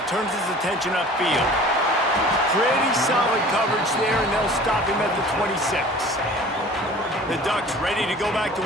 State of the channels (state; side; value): normal; both; correlation 0.45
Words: turns his attention upfield. Pretty solid coverage there, and they'll stop him at the 26. The Ducks ready to go back to